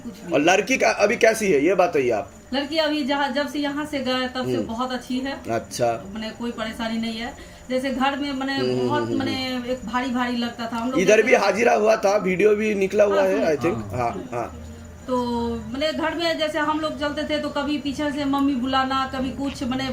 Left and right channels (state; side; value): identical; both; correlation 1.00